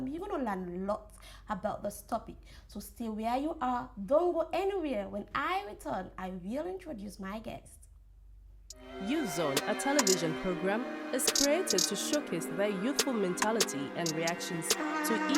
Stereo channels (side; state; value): both; identical; correlation 1.00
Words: you're going to learn a lot about this topic. So stay where you are. Don't go anywhere. When I return, I will introduce my guest. Youth Zone, a television program, is created to showcase their youthful mentality and reactions to